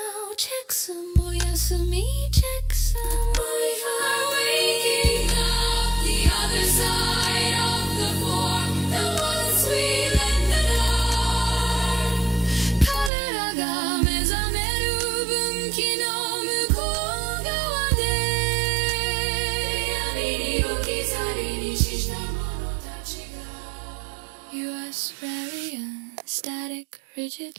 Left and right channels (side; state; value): left; drops out; at 13.1 s